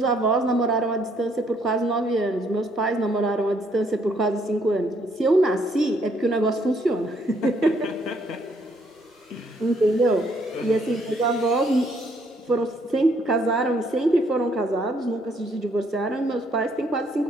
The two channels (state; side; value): normal; both; correlation 0.69